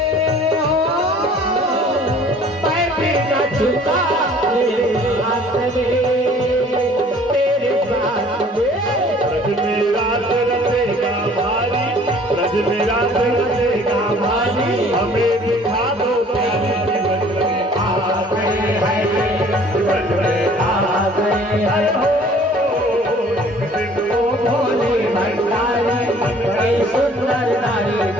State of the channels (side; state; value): both; normal; correlation 0.53